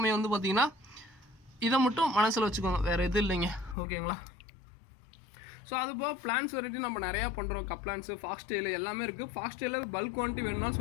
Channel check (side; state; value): right; drops out; at 3.8 s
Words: வந்து பார்த்திங்கன்னா இதை மட்டும் மனசில் வச்சுக்கோங்க, வேறு எதுவும் இல்லைங்க. ஓகேங்களா, ஸோ அது போக பிளான்ஸ் வெரைட்டி நம்ம நிறையா பண்ணுறோம். கப்ளான்ஸு, ஃபாக்ஸ் டெயில் எல்லாமே இருக்குது. ஃபாக்ஸ் டெயிலில் பல்க் குவான்டிட்டி வேணும்னா